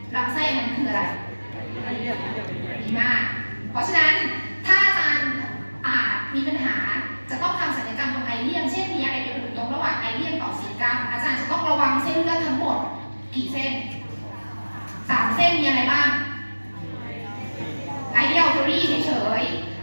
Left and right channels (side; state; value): both; inverted; correlation -1.00